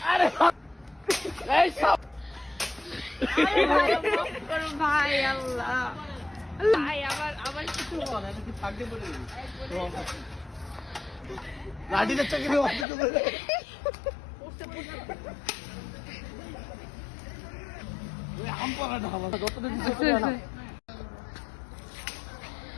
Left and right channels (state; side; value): drops out; right; at 12.9 s